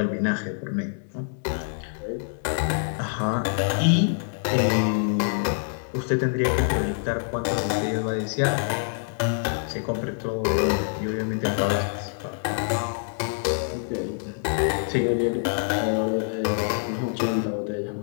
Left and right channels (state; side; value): silent; right; 61 dB below the other